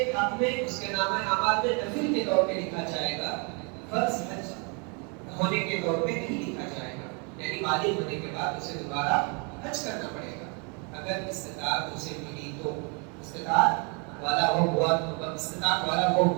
حق میں اس کے نامہ اعمال میں نفل کے طور پہ لکھا جائے گا، فرض حج ہونے کے طور پہ نہیں لکھا جائے گا. یعنی بالغ ہونے کے بعد اسے دوبارہ حج کرنا پڑے گا اگر استطاعت اسے ملی تو. استطاعت والا وہ ہوا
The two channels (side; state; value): left; quieter; 34.7 dB